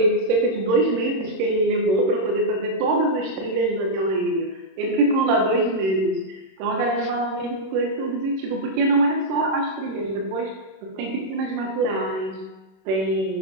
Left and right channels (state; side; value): late; left; 26 ms